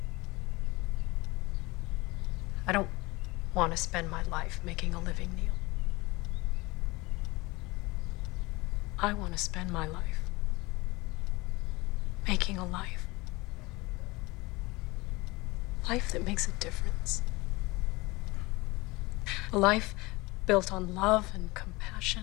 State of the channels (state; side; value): quieter; right; 22.9 dB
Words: I don't want to spend my life making a living, Neil. I want to spend my life making a life. Life that makes a difference. A life built on love and compassion.